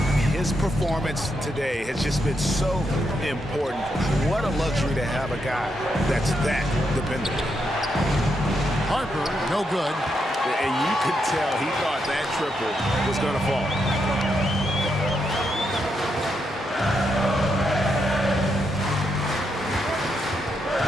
His performance today has just been so important. What a luxury to have a guy that's that dependable. Harper, no good. And you could tell he thought that triple was going to fall.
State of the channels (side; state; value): both; normal; correlation 0.81